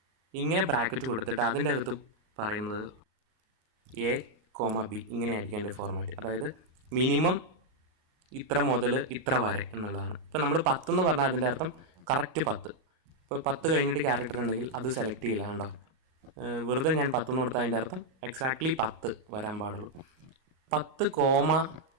ഇങ്ങനെ ബ്രാക്കറ്റ് കൊടുത്തിട്ട് അതിൻ്റെ അകത്ത് പറയുന്നത് A, B ഇങ്ങനെ ആയിരിക്കും എൻ്റെ ഫോർമാറ്റ്. അതായത് മിനിമം ഇത്ര മുതൽ ഇത്ര വരെ എന്നുള്ളതാണ്. ഇപ്പോൾ നമ്മൾ 10 എന്ന് പറഞ്ഞാൽ അതിൻ്റെ അർത്ഥം കറക്റ്റ് 10. ഇപ്പോൾ 10 കഴിഞ്ഞിട്ട് ക്യാരക്ടർ ഉണ്ടെങ്കിൽ അത് സെലക്ട് ചെയ്യില്ല. കണ്ടോ, വെറുതെ ഞാൻ 10 എന്ന് കൊടുത്താൽ അതിൻ്റെ അർത്ഥം എക്സാക്ട്ലി 10 വരാൻ പാടുള്ളൂ.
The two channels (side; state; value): left; late; 38 ms